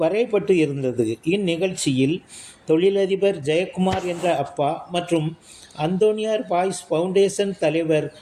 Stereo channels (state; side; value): identical; both; correlation 1.00